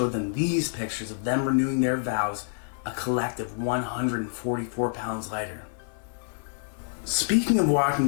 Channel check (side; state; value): right; silent; 60 dB below the other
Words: them these pictures of them renewing their vows, a collective 144 pounds lighter. Speaking of walking